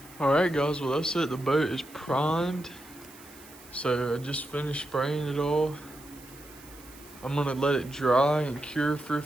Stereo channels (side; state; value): right; noise; hiss, 21 dB below the sound